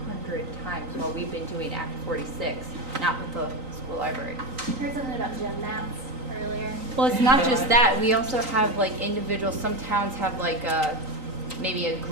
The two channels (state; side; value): late; left; 3.9 ms